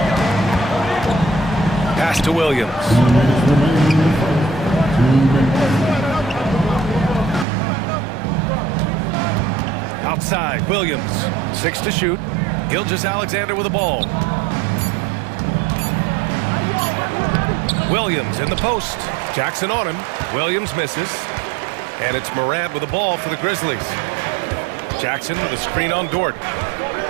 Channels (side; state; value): left; drops out; at 7.5 s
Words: Pass to Williams. Outside, Williams. 6 to shoot. Gilgeous-Alexander with the ball. Williams in the post. Jackson on him. Williams misses. And it's Morant with the ball for the Grizzlies. Jackson with a screen on Dort.